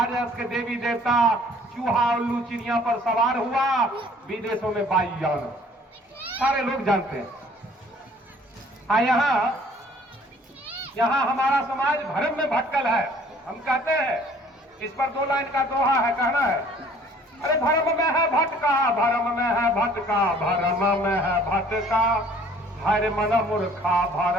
के देवी देवता चूहा उल्लू चिड़िया पर सवार हुआ, विदेशों में वायुयान, सारे लोग जानते हैं। यहाँ हमारा समाज भ्रम में भटकल है। हम कहते हैं, इस पर 2 लाइन का दोहा है, कहना है, अरे भ्रम में है भटका, भ्रम में है भटका, भ्रम में है भटका, हर मन मूर्खा,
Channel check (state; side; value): normal; both; correlation 0.55